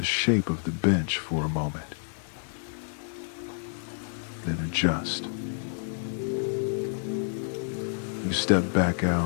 shape of the bench for a moment. Then adjust. You step back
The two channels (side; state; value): right; silent; digital silence